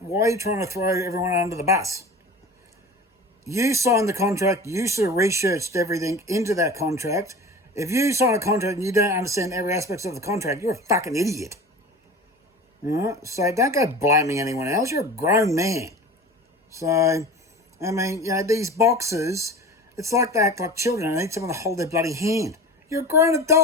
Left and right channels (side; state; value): both; normal; correlation 0.36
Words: are you trying to throw everyone under the bus? You signed the contract. You should have researched everything into that contract. If you sign a contract and you don't understand every aspect of the contract, you're a fucking idiot. Right? So don't go blaming anyone else. You're a grown man. So, these boxers, it's like they act like children. They need someone to hold their bloody hand. You're a grown